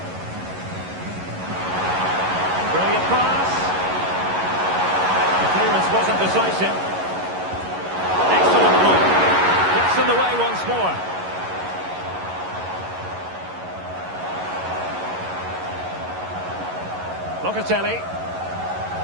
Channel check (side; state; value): left; late; 11 ms